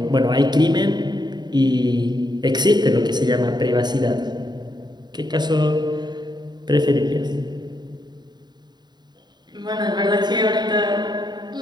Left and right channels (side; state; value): left; late; 0.21 ms